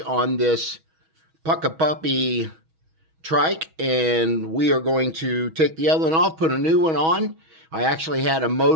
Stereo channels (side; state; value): left; late; 6.2 ms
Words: this Puckipuppy Trike, and we are going to take the other one off, put a new one on. I actually had a